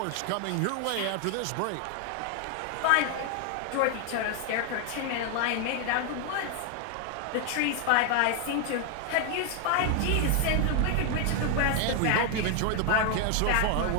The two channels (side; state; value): both; different; correlation 0.00